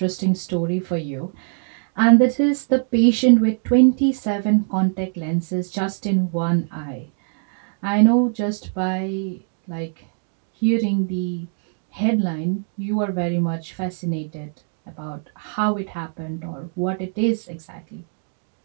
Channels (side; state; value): left; silent; 61 dB below the other